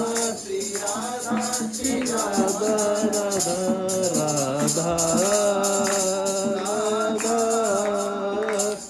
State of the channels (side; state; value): both; identical; correlation 1.00